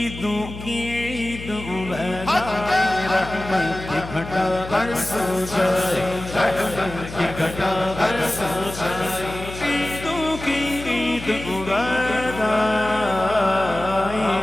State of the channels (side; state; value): left; noise; hum, 11 dB below the sound